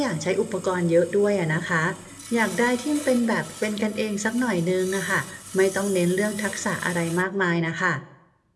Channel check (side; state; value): both; identical; correlation 1.00